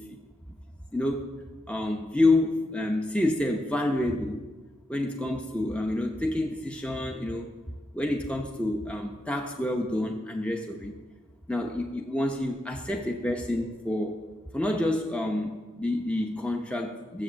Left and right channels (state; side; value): normal; both; correlation 0.85